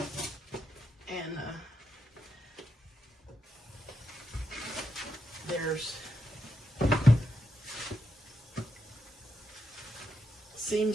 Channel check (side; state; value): both; normal; correlation 0.84